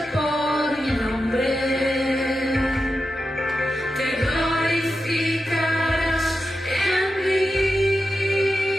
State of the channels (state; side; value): normal; both; correlation 0.90